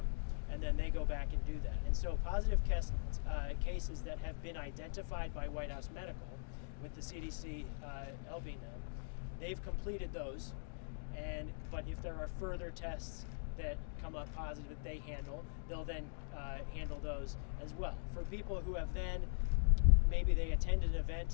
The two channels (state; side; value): silent; right; digital silence